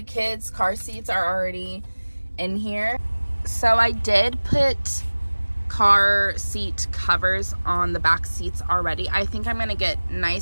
kids' car seats are already in here. So I did put car seat covers on the back seats already. I think I'm gonna get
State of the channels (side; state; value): both; inverted; correlation -1.00